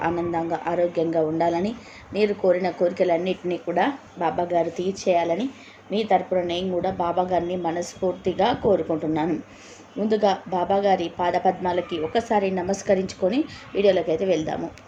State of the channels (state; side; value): identical; both; correlation 1.00